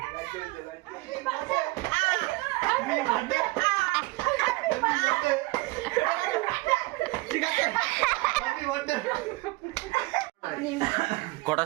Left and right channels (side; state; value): left; quieter; 22.5 dB